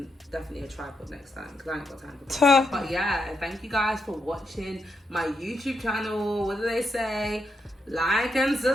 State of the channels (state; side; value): normal; both; correlation 0.82